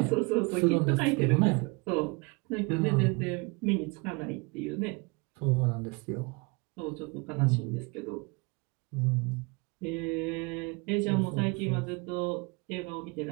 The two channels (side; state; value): left; quieter; 28.5 dB